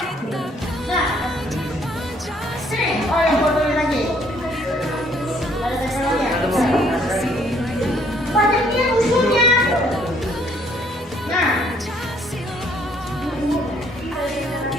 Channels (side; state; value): both; normal; correlation 0.64